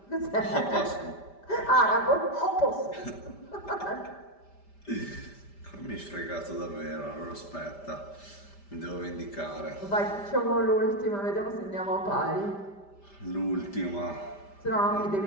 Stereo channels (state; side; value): late; right; 5.1 ms